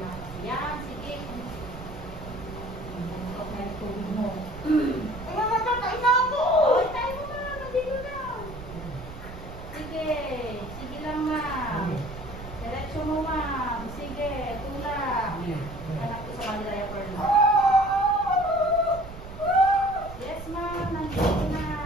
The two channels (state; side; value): noise; right; rumble, 13 dB below the sound